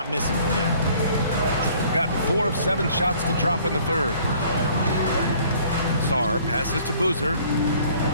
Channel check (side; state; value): both; inverted; correlation -0.56